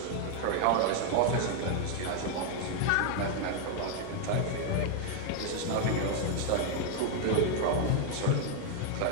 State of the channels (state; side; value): different; both; correlation 0.00